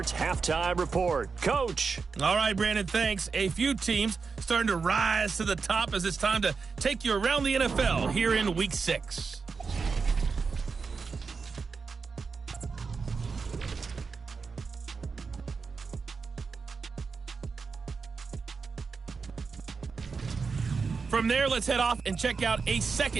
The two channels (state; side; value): quieter; left; 5.0 dB